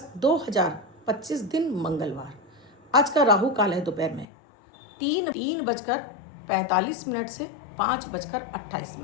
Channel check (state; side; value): drops out; right; at 4.2 s